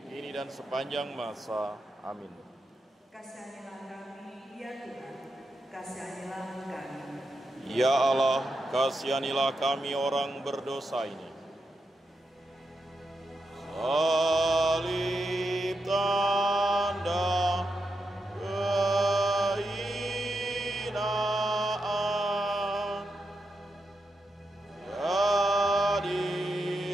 kini dan sepanjang masa. Amin. Kasihanilah kasihanilah kami. Ya Allah, kasihanilah kami orang berdosa ini. Salib tanda kehinaan, jadi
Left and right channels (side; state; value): both; normal; correlation 0.86